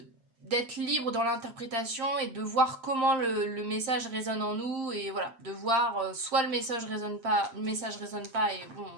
d'être libre dans l'interprétation et de voir comment le message résonne en nous et voilà, de voir soit le message résonne pas et bon,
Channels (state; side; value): late; left; 8.7 ms